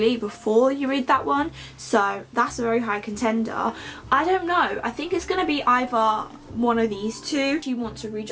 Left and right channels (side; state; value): both; identical; correlation 1.00